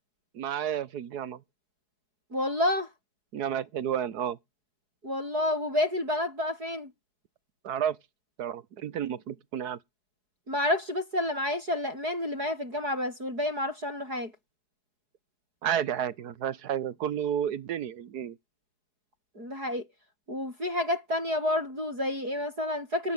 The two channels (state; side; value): late; left; 4.7 ms